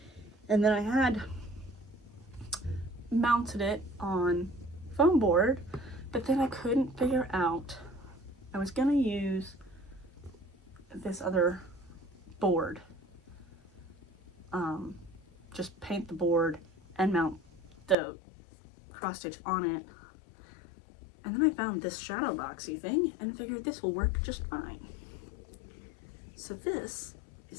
And then I had mounted it on foam board, but then I couldn't figure out, I was gonna use this other board, just paint the board and mount the cross stitch on it. And then I found this shadow boxy thing and figured this will work just fine. So this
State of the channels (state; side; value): drops out; right; at 17.9 s